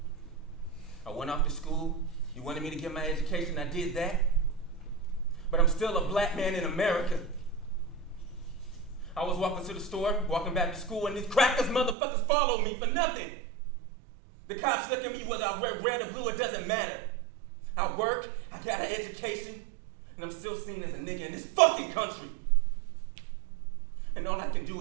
I went off to school. You wanted me to get my education. I did that. But I'm still a black man in America. I was walking to the store, walking back to school, and these crackers motherfuckers followed me for nothing. The cops look at me whether I wear red or blue, it doesn't matter. I work, I got an education, and I'm still seen as a nigga in this fucking country. And all I can do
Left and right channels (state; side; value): drops out; left; at 12.0 s